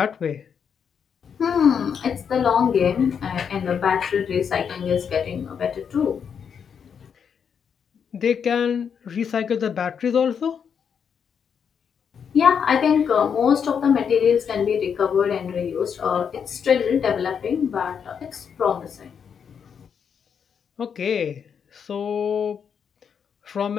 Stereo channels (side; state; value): right; quieter; 7.2 dB